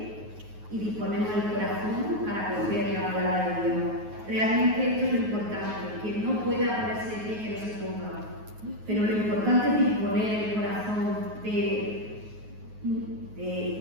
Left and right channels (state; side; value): late; left; 9.4 ms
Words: y disponemos el corazón para acoger la palabra de Dios. Realmente esto es lo importante, quien no pueda ponerse de pie, que no se ponga. Pero lo importante es disponer el corazón de